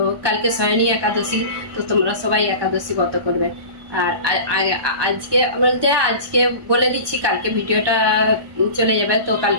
কালকে শয়নী একাদশী তো তোমরা সবাই একাদশী ব্রত করবে আর আজকে বলতে আজকে বলে দিচ্ছি কালকে ভিডিওটা চলে যাবে তো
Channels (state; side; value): late; left; 1.2 ms